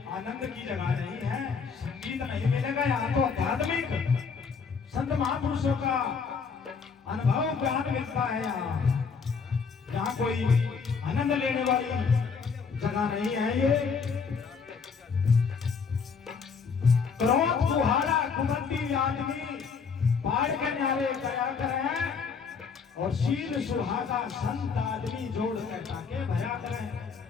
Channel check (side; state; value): right; quieter; 5.6 dB